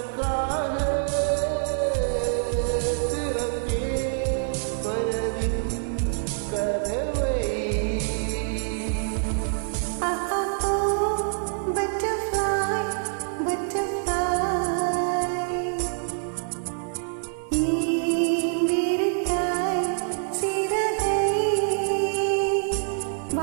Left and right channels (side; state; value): left; silent; 58 dB below the other